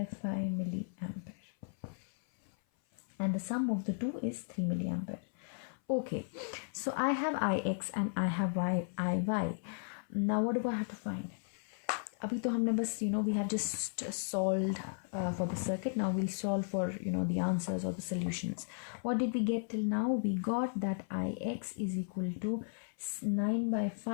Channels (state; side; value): silent; right; 54 dB below the other